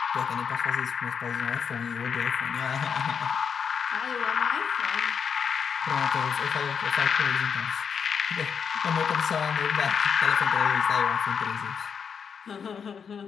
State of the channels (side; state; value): right; quieter; 6.7 dB